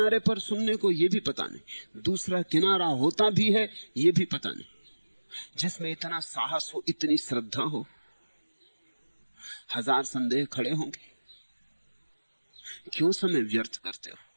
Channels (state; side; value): inverted; both; correlation -1.00